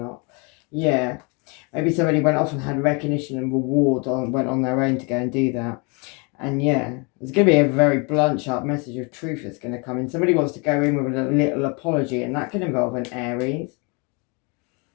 Yeah, maybe somebody went off and had recognition and reward, went on their own to go and do that. And yeah, there's going to be a very blunt, sharp message of truth that's going to come in. Somebody wants to go in with a little apology, and that can involve an Aries.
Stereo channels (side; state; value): right; quieter; 31.9 dB